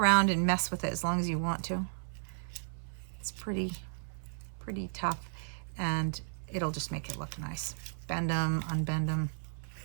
and mess with it as long as you want to. It's pretty tough, and it'll just make it look nice. Bend them, unbend them.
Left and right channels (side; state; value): left; silent; 55 dB below the other